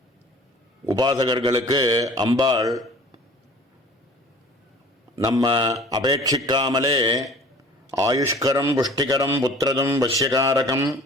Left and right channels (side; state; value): both; normal; correlation 0.47